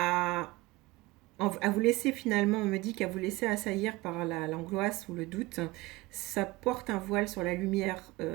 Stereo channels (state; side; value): quieter; left; 21.0 dB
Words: à vous laisser finalement, on me dit qu'à vous laisser assaillir par l'angoisse ou le doute, ça porte un voile sur la lumière